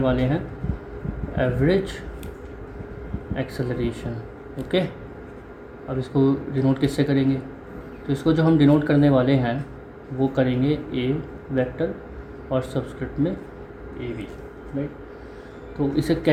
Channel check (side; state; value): both; identical; correlation 1.00